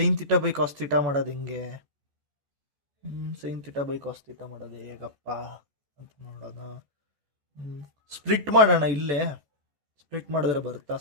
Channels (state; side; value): late; left; 14 ms